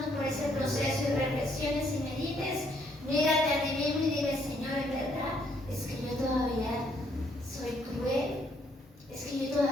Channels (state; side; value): normal; both; correlation 0.69